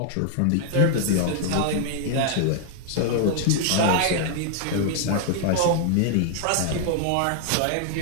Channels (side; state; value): both; different; correlation 0.00